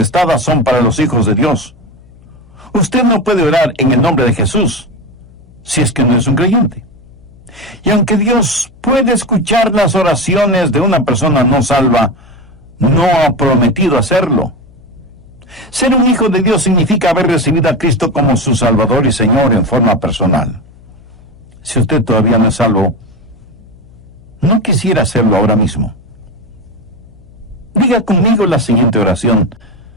son para los hijos de Dios. Usted no puede orar en el nombre de Jesús si es que no es un creyente. Y aunque Dios puede escuchar las oraciones de una persona no salva, no ha prometido hacerlo. Ser un hijo de Dios significa haber recibido a Cristo como su Salvador y Señor en forma personal. Si usted todavía no es salvo, no quisiera hacerlo ahora mismo. Diga conmigo la siguiente oración.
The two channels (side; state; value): left; noise; hum, 25 dB below the sound